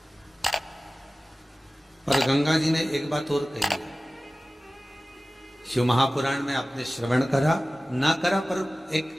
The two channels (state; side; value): normal; both; correlation 0.97